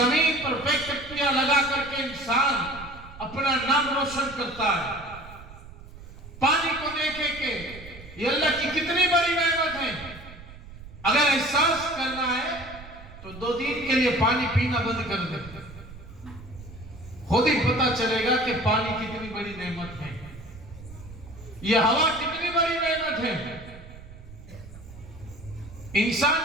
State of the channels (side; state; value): right; noise; rumble, 16 dB below the sound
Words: پر فیکٹریاں لگا کر کے انسان اپنا نام روشن کرتا ہے۔ پانی کو دیکھے کہ یہ اللہ کی کتنی بڑی نعمت ہے۔ اگر احساس کرنا ہے تو 2 دن کے لیے پانی پینا بند کر دے، خود ہی پتہ چلے گا کہ پانی کتنی بڑی نعمت ہے، یہ ہوا کتنی بڑی نعمت ہے۔ انسان